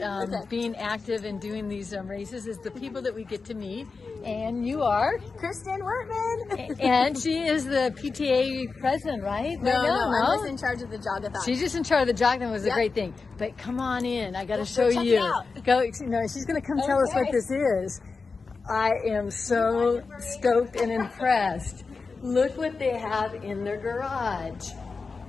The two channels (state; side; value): quieter; right; 4.5 dB